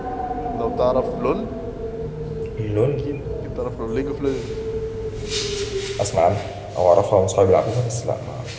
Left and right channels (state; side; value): identical; both; correlation 1.00